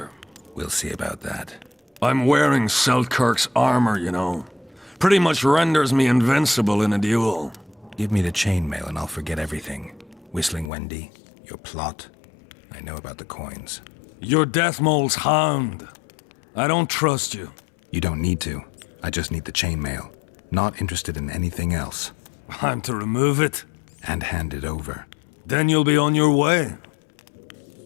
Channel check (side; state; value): right; drops out; at 10.7 s